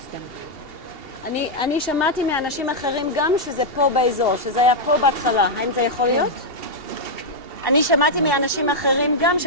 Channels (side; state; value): left; late; 2.7 ms